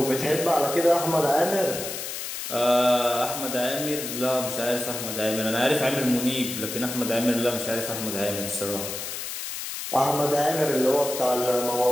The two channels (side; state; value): left; noise; hiss, 6 dB below the sound